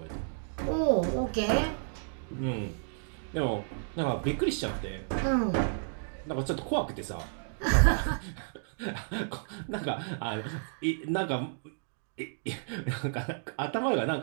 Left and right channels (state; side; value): silent; left; digital silence